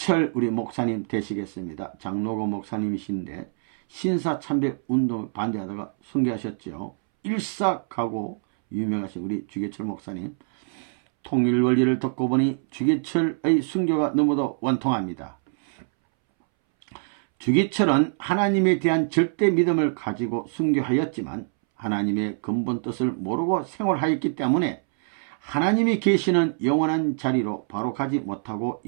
우리 목사님 되시겠습니다. 장로고 목사님이신데 신사참배 운동 반대하다가 순교하셨죠. 일삭하고 유명하신 우리 주기철 목사님. 통일원리를 듣고 보니 주기철의 순교가 너무도 원통합니다. 주기철은 하나님에 대한 절대 믿음을 가지고 순교하였지만 하나님의 근본 뜻을 모르고 생활하였기 때문에 하나님이 계시는 영원한 자리로 바로 가지 못하고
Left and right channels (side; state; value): left; silent; 62 dB below the other